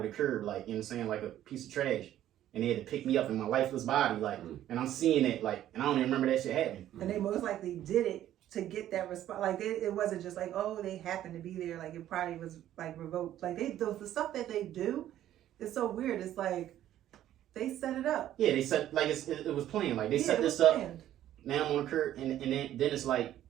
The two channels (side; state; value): left; quieter; 12.3 dB